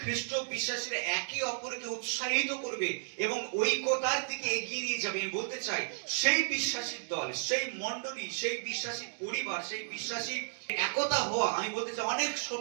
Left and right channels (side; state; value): left; silent; digital silence